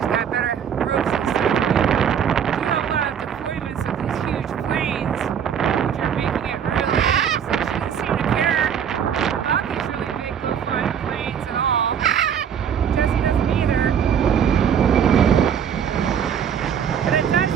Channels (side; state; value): left; quieter; 8.2 dB